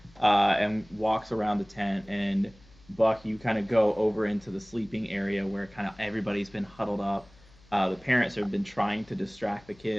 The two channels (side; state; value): left; noise; hum, 27 dB below the sound